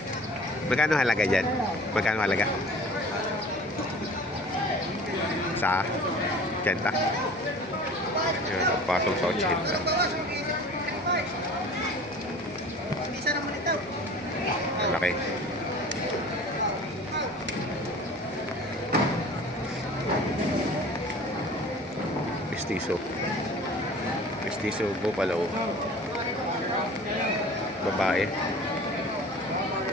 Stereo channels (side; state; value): both; normal; correlation 0.43